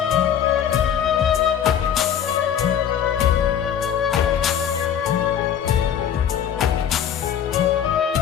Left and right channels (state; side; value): quieter; right; 9.1 dB